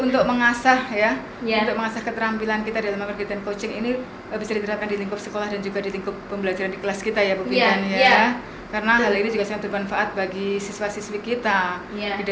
mengasah untuk mengasah keterampilan kita dalam kegiatan coaching ini bisa diterapkan di lingkup sekolah dan juga di lingkup pembelajaran di kelas kita ya Bu Bintan Karena hal ini juga sangat bermanfaat bagi siswa-siswi kita di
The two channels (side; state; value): both; identical; correlation 1.00